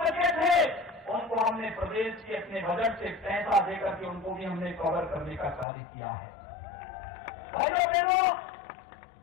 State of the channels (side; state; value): right; drops out; at 5.7 s